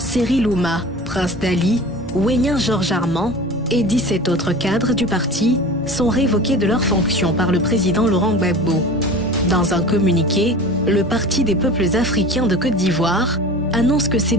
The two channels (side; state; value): both; normal; correlation 0.36